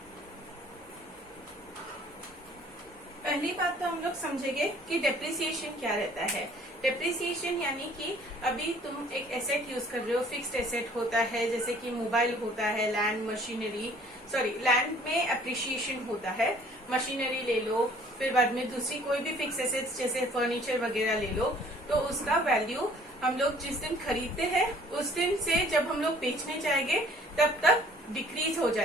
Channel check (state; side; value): normal; both; correlation 0.56